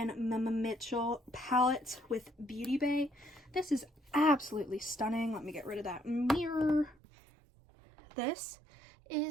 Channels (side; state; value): left; drops out; at 7.0 s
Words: Mama Mitchell palette with Beauty Bay. This is absolutely stunning. Let me get rid of that mirror. This